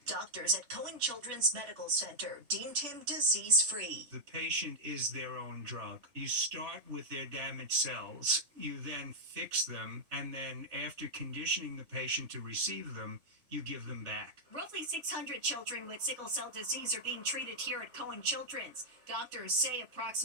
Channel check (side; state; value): left; late; 3.3 ms